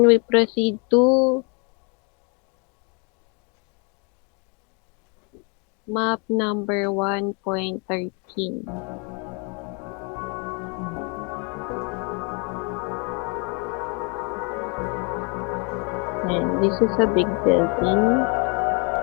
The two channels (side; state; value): right; quieter; 34.4 dB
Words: we proceed to map number 1.13. And this is a big building.